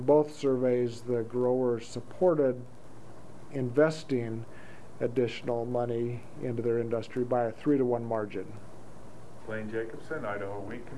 both surveys, the growers supported investing additional money into their industry by a 3-to-1 margin. Blaine Jacobson, Idaho Wheat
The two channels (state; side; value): identical; both; correlation 1.00